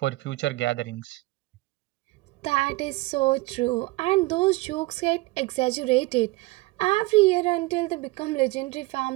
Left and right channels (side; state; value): left; quieter; 21.4 dB